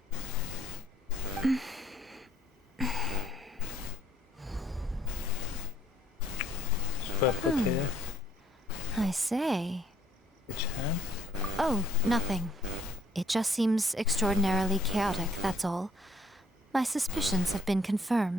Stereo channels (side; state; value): both; normal; correlation 0.63